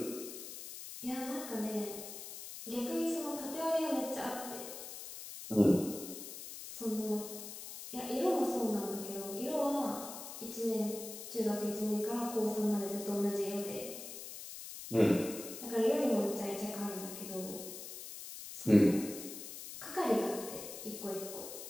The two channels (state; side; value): noise; left; hiss, 10 dB below the sound